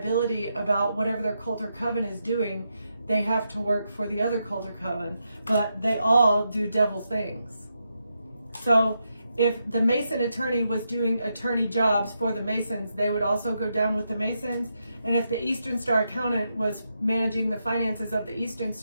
about whatever their cult or coven is doing, they have to work for the other cult or coven. But they all do devil things. So if the Mason attorney was doing attorney jobs for the Masons, they would also go down with the Masons. And if the Eastern Star accountant was managing the finances of the Eastern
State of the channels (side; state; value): both; inverted; correlation -0.83